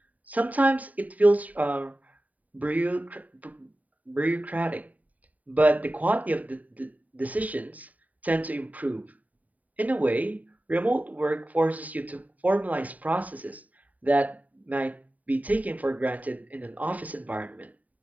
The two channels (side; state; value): left; late; 0.073 ms